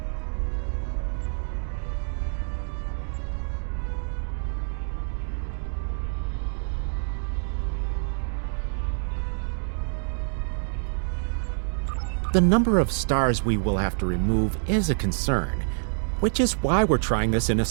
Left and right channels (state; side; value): silent; left; digital silence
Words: The number of stars we will have to remove is a concern, which is why we're trying this in a